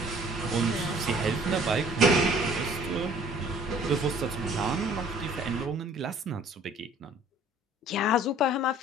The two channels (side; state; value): both; normal; correlation 0.54